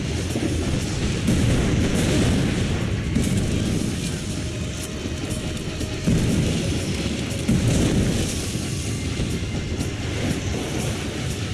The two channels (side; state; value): both; identical; correlation 1.00